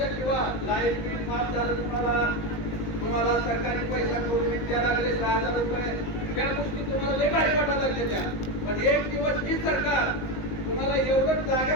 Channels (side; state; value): right; late; 19 ms